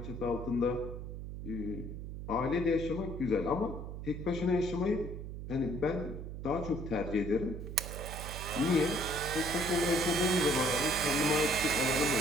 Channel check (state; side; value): noise; right; hum, 8 dB below the sound